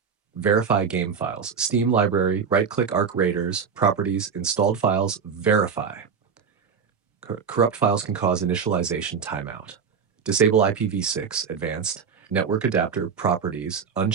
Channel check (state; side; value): quieter; left; 6.3 dB